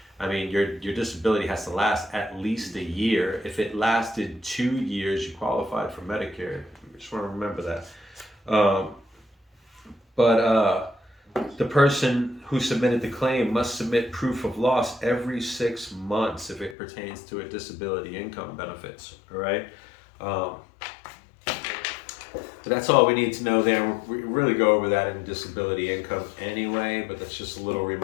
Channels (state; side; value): drops out; right; at 16.8 s